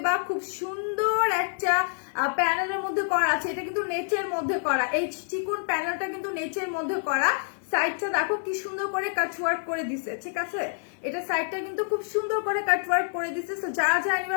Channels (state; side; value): silent; right; digital silence